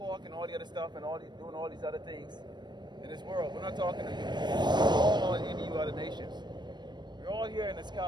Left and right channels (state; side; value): late; left; 0.21 ms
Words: and all the other stuff and doing all these other things in this world. We're not talking to you. We're all any you other nations. We're all here in this